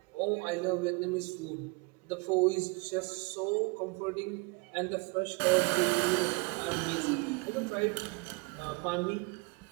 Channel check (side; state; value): left; quieter; 28.8 dB